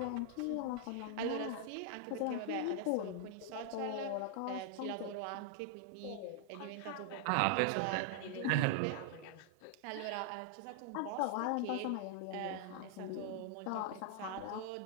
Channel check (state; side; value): different; both; correlation -0.01